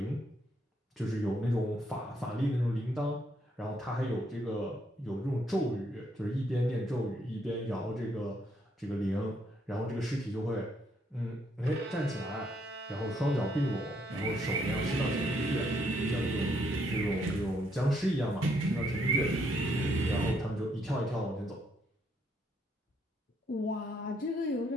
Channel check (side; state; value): both; normal; correlation 0.72